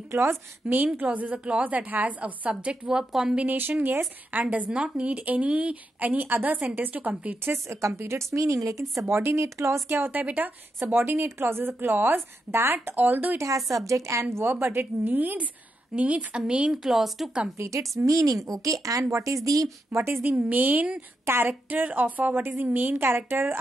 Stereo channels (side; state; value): both; normal; correlation 0.85